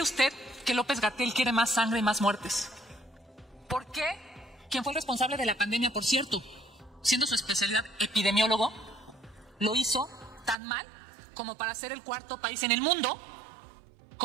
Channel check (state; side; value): drops out; left; at 10.6 s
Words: usted que López-Gatell quiere más sangre y más muertes? ¿Por qué quien fue el responsable de la pandemia, por cierto, siendo su especialidad epidemiólogo, lo hizo tan mal como para ser el 4º país en el mundo